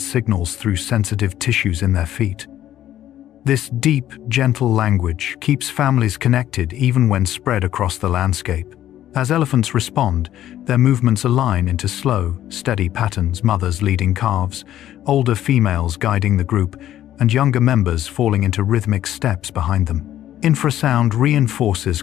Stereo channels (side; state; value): right; quieter; 12.3 dB